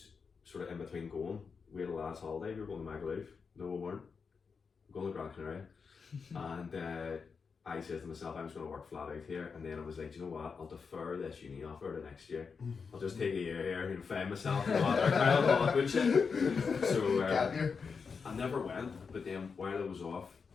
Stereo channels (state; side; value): quieter; right; 5.5 dB